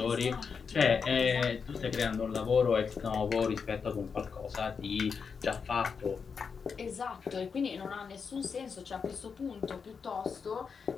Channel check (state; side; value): quieter; right; 5.8 dB